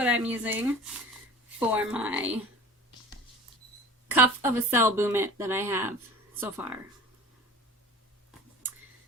I'm using for my cuff of a Cell Boom Mitt that I have so far.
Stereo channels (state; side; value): normal; both; correlation 0.40